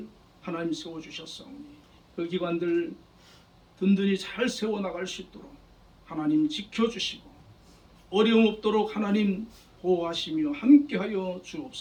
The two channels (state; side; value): identical; both; correlation 1.00